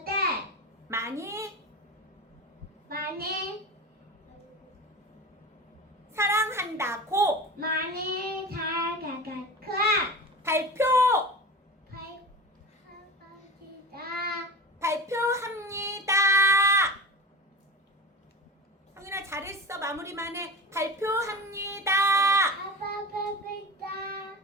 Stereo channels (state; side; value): normal; both; correlation 0.30